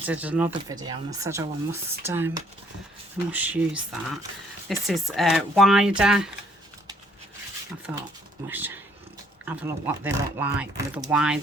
another video, and I said, oh, I must use that. This is wider. I thought I should have a look what they look like with a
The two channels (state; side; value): normal; both; correlation 0.64